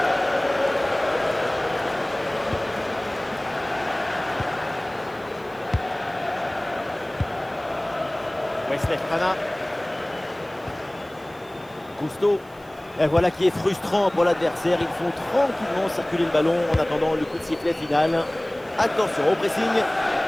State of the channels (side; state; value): right; noise; hiss, 27 dB below the sound